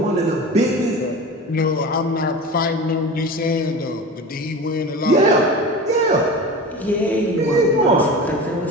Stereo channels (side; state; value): both; normal; correlation 0.32